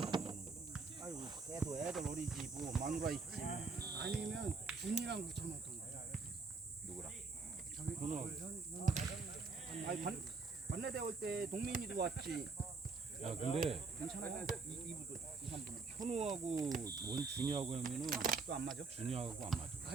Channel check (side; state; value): left; quieter; 4.5 dB